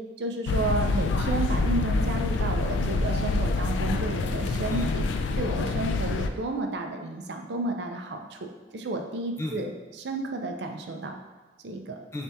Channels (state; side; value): normal; both; correlation 0.53